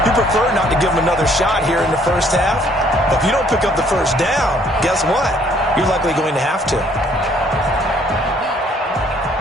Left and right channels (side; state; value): both; normal; correlation 0.62